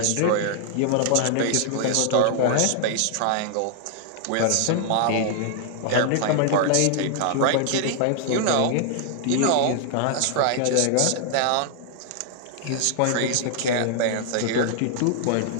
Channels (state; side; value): different; both; correlation 0.00